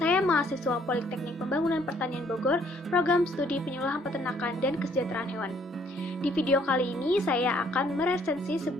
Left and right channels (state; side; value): normal; both; correlation 0.64